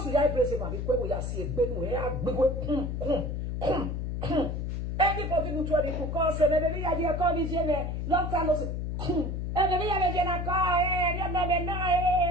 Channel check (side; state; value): left; noise; hum, 3 dB below the sound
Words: we are praising my because we are seeing Benu, anybody who told me to call, say, maybe I did call this year, long time no say, and maybe I did